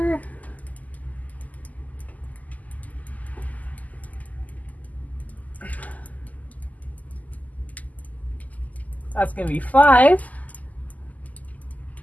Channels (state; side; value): late; right; 0.078 ms